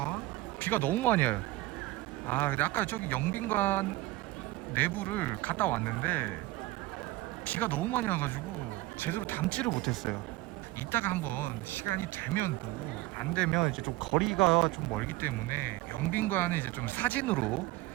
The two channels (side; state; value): left; quieter; 18.4 dB